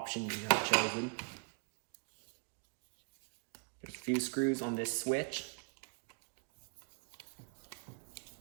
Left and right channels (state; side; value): quieter; left; 35.7 dB